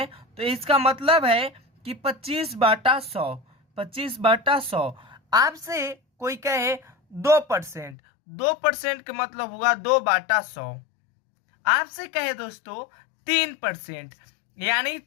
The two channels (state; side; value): drops out; right; at 8.0 s